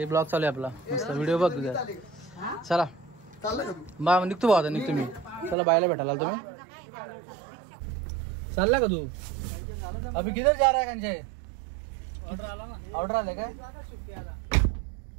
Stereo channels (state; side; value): drops out; left; at 5.6 s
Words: ब्लॉग चालू आहे आपला मस्त. व्हिडिओ बघ तुझा. चला बा निघतो भाऊ. आता निघतो मी. चला बायला भेटायला तुम्ही. चालला का तू? अभी किधर जा रहा है कंचे? ऑर्डर आला ना. ऑर्डर आले काय?